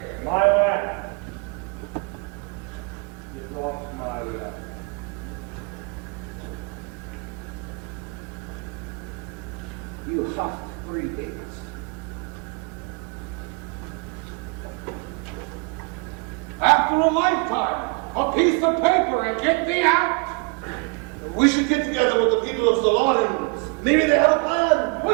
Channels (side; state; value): left; quieter; 31.7 dB